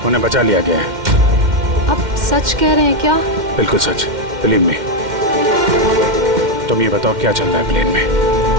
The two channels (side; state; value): left; late; 2.1 ms